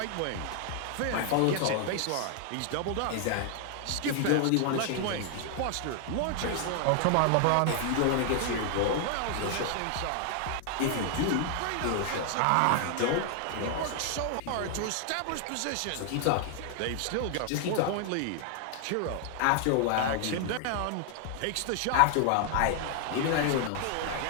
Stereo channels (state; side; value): different; both; correlation 0.00